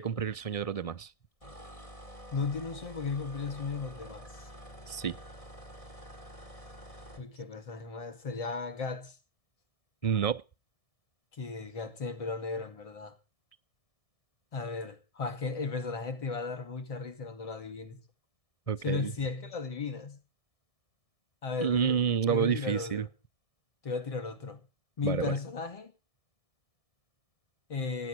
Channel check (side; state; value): right; late; 1.7 ms